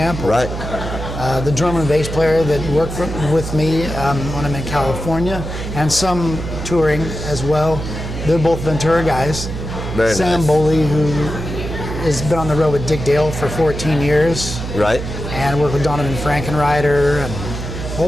Right. The drummer and bass player that worked with me when I'm in California, and some touring as well. They're both Ventura guys. Very Sam nice. Boley, who has been on the road with Dick Dale for 14 years. Right. And worked with Donovan Frankenreiter and a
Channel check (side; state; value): right; noise; hum, 6 dB below the sound